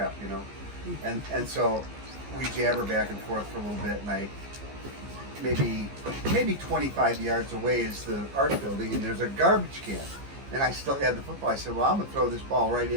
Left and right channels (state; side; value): late; left; 15 ms